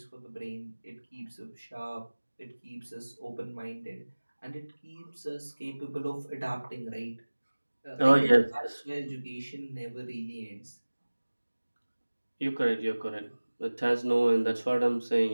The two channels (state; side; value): inverted; both; correlation -1.00